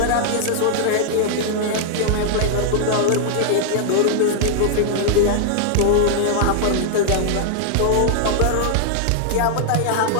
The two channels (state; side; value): different; both; correlation -0.01